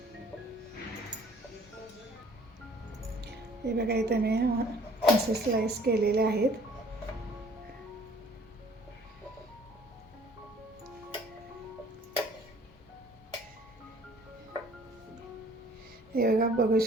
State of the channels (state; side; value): normal; both; correlation 0.55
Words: हे बघा इथे मी असे स्लाइस केलेले आहेत. हे बघा बघू